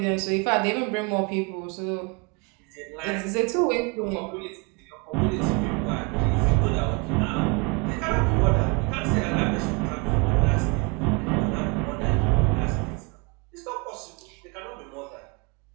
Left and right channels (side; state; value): left; quieter; 30.6 dB